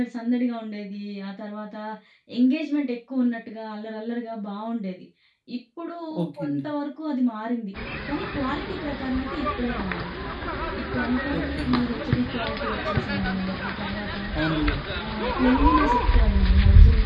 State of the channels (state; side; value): identical; both; correlation 1.00